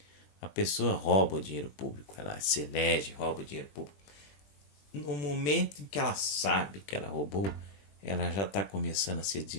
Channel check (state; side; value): late; right; 20 ms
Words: a pessoa rouba o dinheiro público, ela se elege, rouba o dinheiro público. No momento em que ela sabe que ela roubou, ela já está começando a se